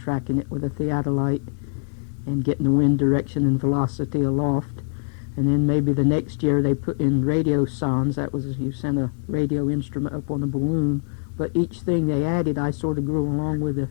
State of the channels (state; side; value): silent; right; 63 dB below the other